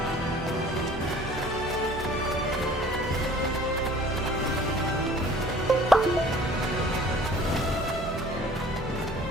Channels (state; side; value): normal; both; correlation 0.50